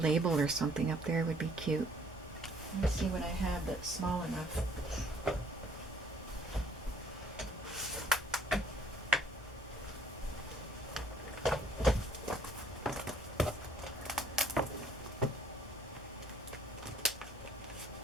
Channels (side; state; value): both; normal; correlation 0.59